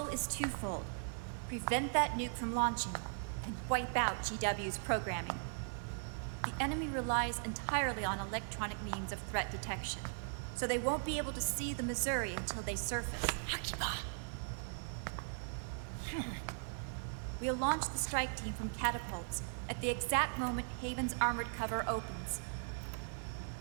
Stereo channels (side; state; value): left; silent; 52 dB below the other